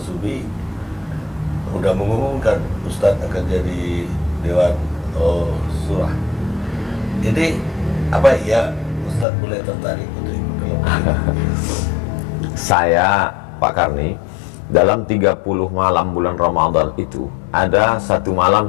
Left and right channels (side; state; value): right; drops out; at 9.2 s